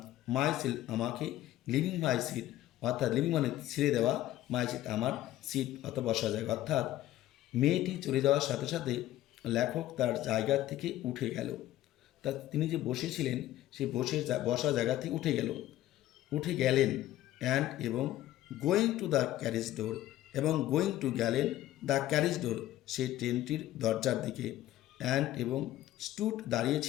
মাই সেলফ, আমাকে, লিভিং মাই সিট, অর্থাৎ লিভিং মানে ছেড়ে দেওয়া, মাই সিট আমার সিট অর্থাৎ বসা জায়গা। অর্থাৎ মেয়েটি চলে যাওয়ার সাথে সাথে লেখক তার জায়গা থেকে উঠে গেল, তা তিনি যে বসেছিলেন সেই বসা জায়গা থেকে উঠে গেলেন, অ্যান্ড এবং, গোয়িং টু দ্য ক্যারেজ ডোর, এবং গোয়িং টু গেলেন দ্য ক্যারেজ ডোর, সেই ট্রেনটির দরজার দিকে, অ্যান্ড এবং, স্টুড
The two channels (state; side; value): quieter; right; 14.2 dB